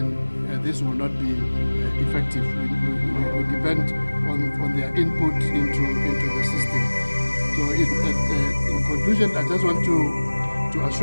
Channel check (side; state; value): both; inverted; correlation -1.00